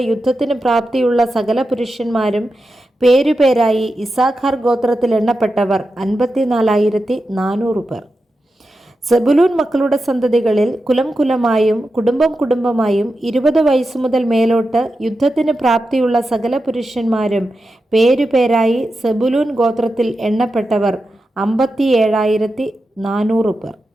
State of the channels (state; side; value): normal; both; correlation 0.90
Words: യുദ്ധത്തിന് പ്രാപ്തിയുള്ള സകല പുരുഷന്മാരും പേരുപേരായി ഇസാഖാർ ഗോത്രത്തിൽ എണ്ണപ്പെട്ടവർ 54,400 പേർ. സെബുലൂൻ മക്കളുടെ സന്തതികളിൽ കുലം കുലമായും കുടുംബം കുടുംബമായും 20 വയസ്സു മുതൽ മേലോട്ട് യുദ്ധത്തിന് പ്രാപ്തിയുള്ള സകല പുരുഷന്മാരും പേരുപേരായി സെബുലൂൻ ഗോത്രത്തിൽ എണ്ണപ്പെട്ടവർ 57,400 പേർ.